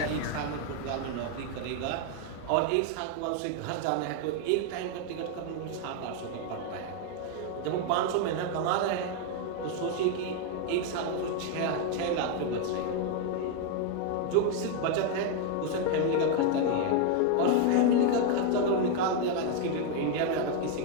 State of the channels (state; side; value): different; both; correlation 0.01